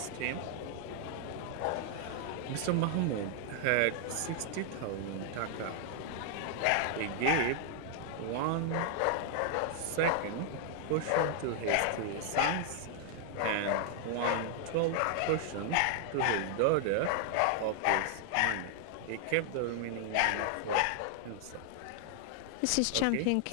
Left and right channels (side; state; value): both; different; correlation 0.00